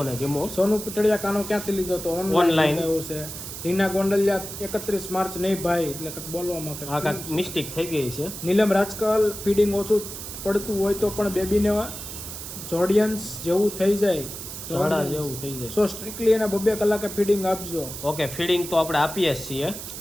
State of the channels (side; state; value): right; noise; hiss, 9 dB below the sound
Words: ગમ્યો. સોનુ પટડિયા, કાનો ક્યાંથી લીધો તો? ઓનલાઈન એવું છે. રીના ગોંડલિયા, 31 માર્ચ નહીં ભાઈ, એટલે કંઈક બોલવામાં આ કાંઈક મિસ્ટેક થઈ ગઈ છે. નીલમ રાજકલ, ફીડિંગ ઓછું પડતું હોય તો પણ બેબીને જોડિયન્સ જેવું થઈ જાય, ઝાડા જેવું થઈ જાય. સો સ્ટ્રિક્ટલી એને 2 કલાકે ફીડિંગ આપજો. ઓકે ફીડિંગ તો આપણે આપીએ જ છીએ